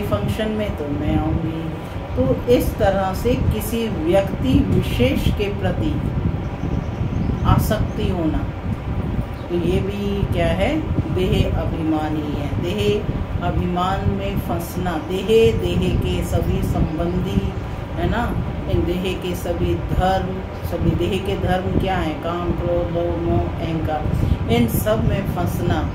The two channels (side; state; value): both; identical; correlation 1.00